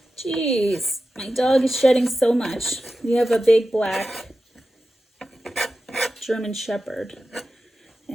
Jeez, my dog is shedding so much. We have a big black German Shepherd,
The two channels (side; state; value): both; normal; correlation 0.93